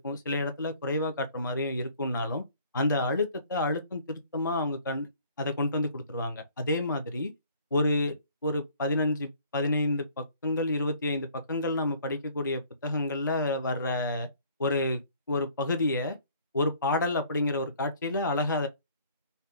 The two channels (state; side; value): inverted; both; correlation -0.56